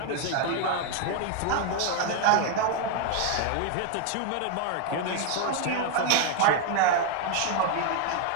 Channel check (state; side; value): different; both; correlation 0.00